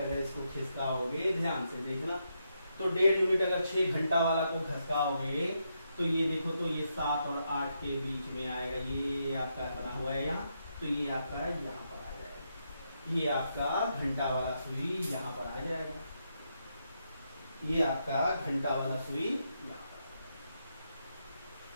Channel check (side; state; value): both; inverted; correlation -0.81